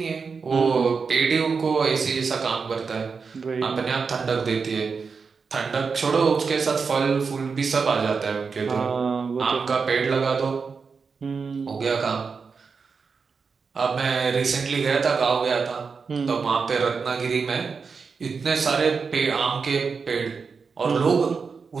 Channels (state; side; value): quieter; left; 5.2 dB